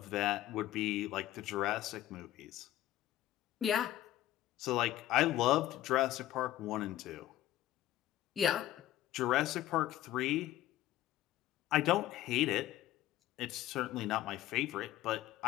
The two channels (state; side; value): quieter; right; 14.1 dB